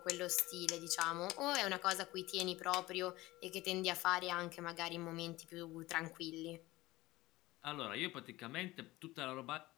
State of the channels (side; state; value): right; quieter; 18.9 dB